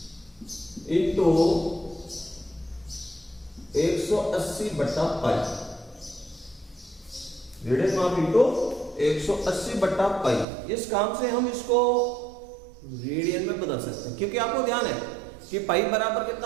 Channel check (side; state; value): left; drops out; at 10.5 s